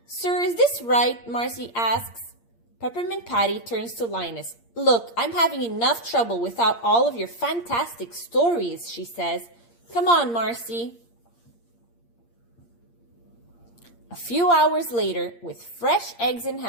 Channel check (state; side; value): late; right; 8.6 ms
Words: Sir, is this right?" Marcy asks. Peppermint Patty turns to Linus. "Look, I'm having enough trouble without all of your fantastic stories," she says. "Come on, Marcy." A few hours later, with fresh eggs in